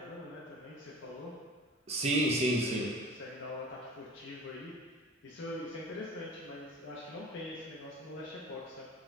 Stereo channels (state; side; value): normal; both; correlation 0.41